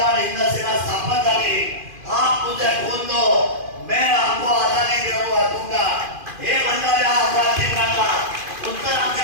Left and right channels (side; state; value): left; late; 2.5 ms